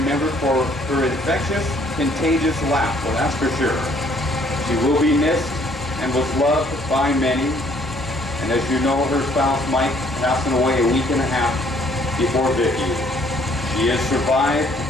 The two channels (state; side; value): normal; both; correlation 0.63